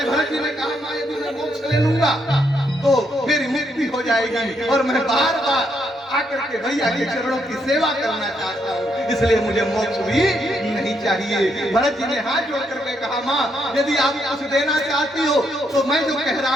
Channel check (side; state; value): both; normal; correlation 0.76